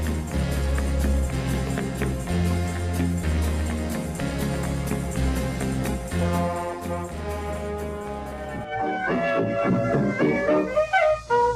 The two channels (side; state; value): both; identical; correlation 1.00